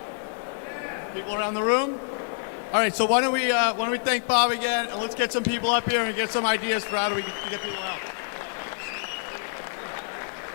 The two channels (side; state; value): right; silent; 60 dB below the other